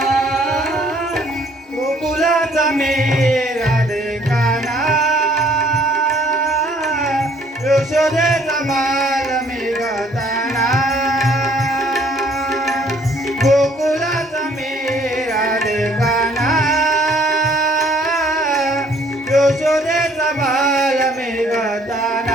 गोकुलाचा मेरा काना यशोदेचा बाल मी गताना गोकुलाचा मेरा काना यशोदेचा बाल मी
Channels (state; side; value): normal; both; correlation 0.60